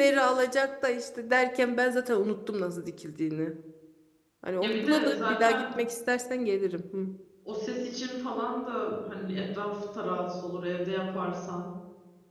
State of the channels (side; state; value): both; identical; correlation 1.00